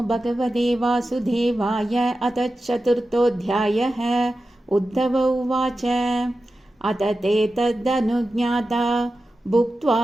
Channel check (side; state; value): both; normal; correlation 0.92